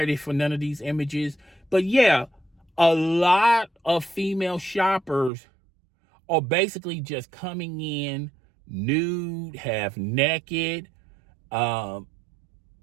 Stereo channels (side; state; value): left; drops out; at 5.3 s